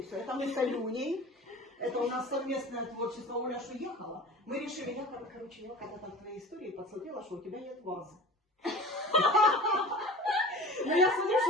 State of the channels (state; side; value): normal; both; correlation 0.38